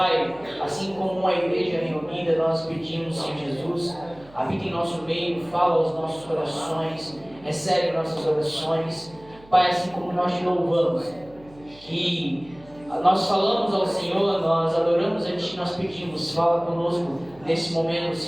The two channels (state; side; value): noise; right; hum, 24 dB below the sound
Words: assim como uma igreja reunida, nós pedimos, Senhor Jesus, habita em nosso meio, fala aos nossos corações, recebe nossas orações. Pai, assim como nós te louvamos, que nós falamos ao Senhor, nós adoramos a Ti, nós pedimos, fala conosco nesse momento,